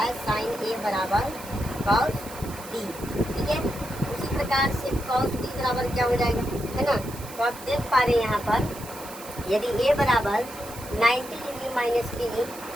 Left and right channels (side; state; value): right; noise; hiss, 15 dB below the sound